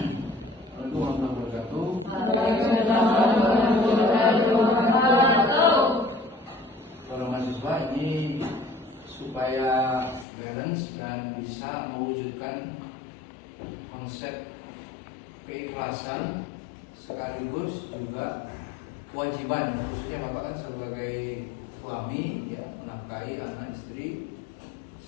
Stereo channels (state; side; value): drops out; right; at 10.2 s